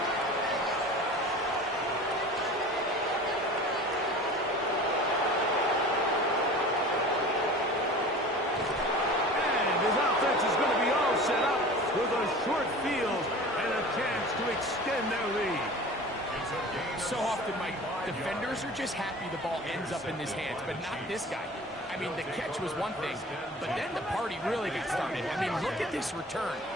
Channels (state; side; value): normal; both; correlation 0.39